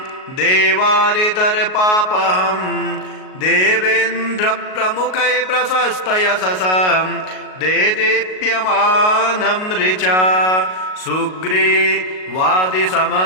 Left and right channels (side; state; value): right; late; 38 ms